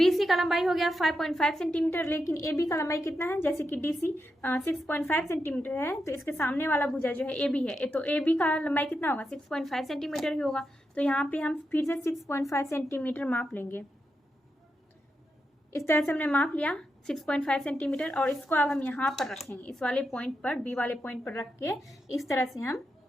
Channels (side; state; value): both; normal; correlation 0.86